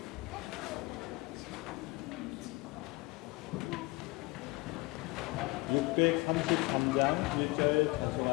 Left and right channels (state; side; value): quieter; right; 23.5 dB